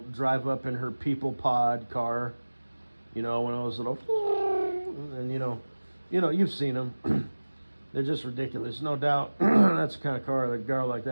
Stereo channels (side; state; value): both; inverted; correlation -1.00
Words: drive up in her people pod car, one of those little, and you've seen them. They're just ridiculous, no doubt. That's the kind of car that a girl like